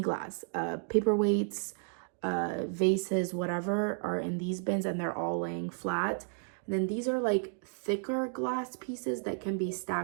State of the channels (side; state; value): left; silent; 56 dB below the other